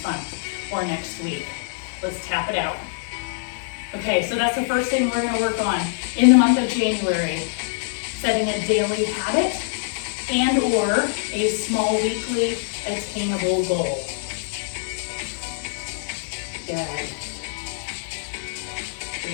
month or next week. Let's tap it out. Okay, so that's the first thing we're gonna work on in the month of January. Setting a daily habit and or a small weekly attainable goal. Good.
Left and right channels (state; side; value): silent; right; digital silence